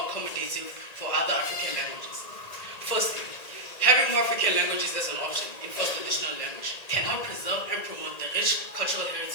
accommodative for other African languages? Firstly, having more African languages as an option in first additional language can help preserve and promote the rich cultural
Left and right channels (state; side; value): late; right; 1.9 ms